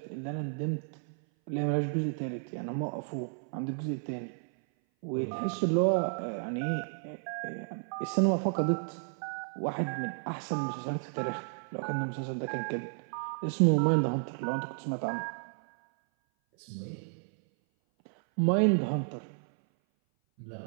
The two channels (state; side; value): silent; left; 56 dB below the other